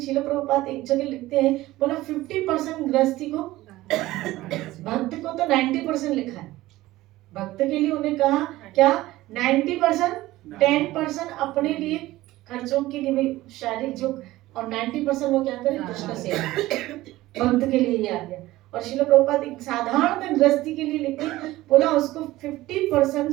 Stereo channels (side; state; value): left; quieter; 17.2 dB